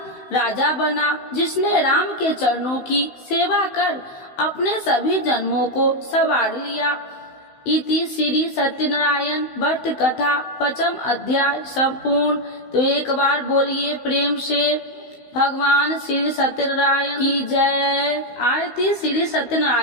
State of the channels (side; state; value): right; late; 16 ms